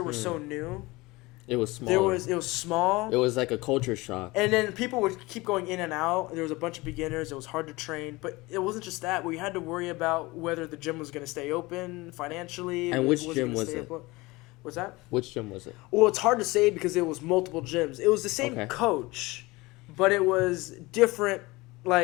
were so new. It was small. It was small. It was like a culture shock. And then people would keep going in and out. There was a bunch of beginners. It was hard to train. But it wasn't just that. We had to worry about whether the gym was going to stay open financially. And which gym was it? What's that? Which gym was it? Well, it's hard to say because it was multiple gyms. It was the same coach, but it was different,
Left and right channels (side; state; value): right; quieter; 22.1 dB